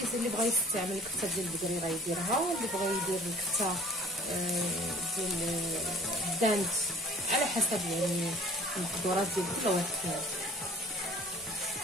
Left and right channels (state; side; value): normal; both; correlation 0.49